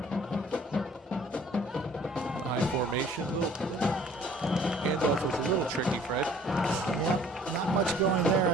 Formation. Handoff was a little tricky, Fred. Yeah, not much going there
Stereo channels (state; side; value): normal; both; correlation 0.54